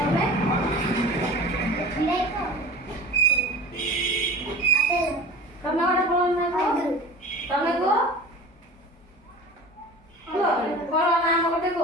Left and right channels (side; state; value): both; normal; correlation 0.38